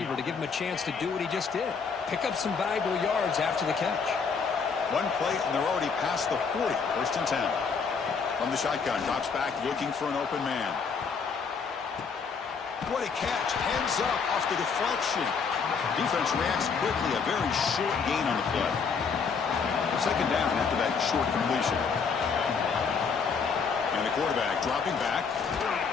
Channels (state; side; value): quieter; right; 5.6 dB